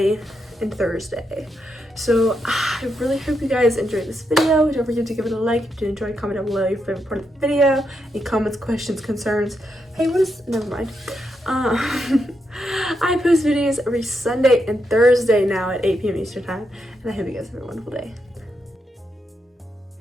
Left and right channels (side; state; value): both; normal; correlation 0.82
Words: and Thursday. So I really hope you guys enjoyed this video. Don't forget to give it a like if you did enjoy. Comment down below your favorite part of the video. Any comments, questions, concerns. Hey, what is, never mind. I post videos every Sunday and Thursday now at 8 p.m. Eastern time. And I hope you guys have a wonderful day.